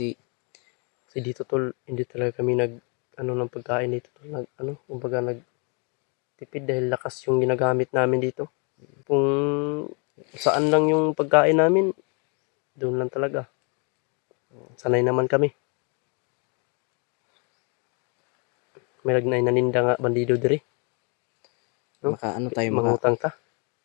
dito tol, hindi talaga kami ng pagkain dito tol. Kumbaga nagtipid dahil lakas yung ginagamit namin dito. Kung saan lang yung pagkain namin, doon lang talaga. Sanay naman kami. May naninda nga bandido diri. No? Mangutang ta.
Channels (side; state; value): right; quieter; 35.4 dB